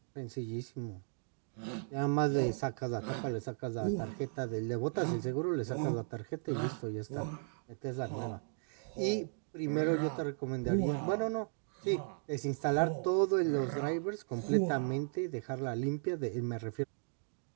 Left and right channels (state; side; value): silent; left; digital silence